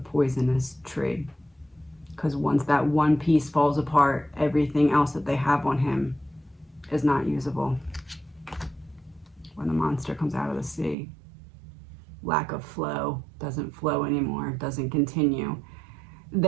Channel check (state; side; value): drops out; left; at 11.0 s